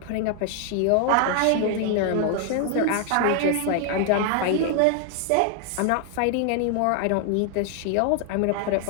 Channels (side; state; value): both; different; correlation 0.00